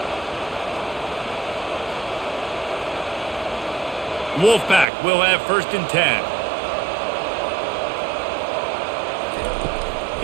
Wolfpack will have first and 10.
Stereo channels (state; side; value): drops out; left; at 4.9 s